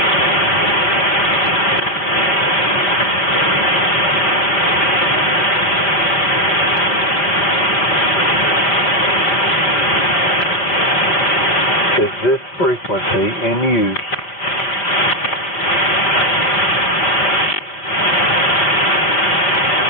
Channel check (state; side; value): late; right; 4.7 ms